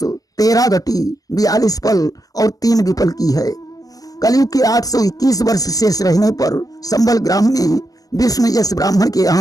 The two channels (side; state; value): right; late; 0.17 ms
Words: 13 घटी 42 पल और 3 विपल की है। कलयुग के 821 वर्ष शेष रहने पर संबल ग्राम में विष्णु यश ब्राह्मण के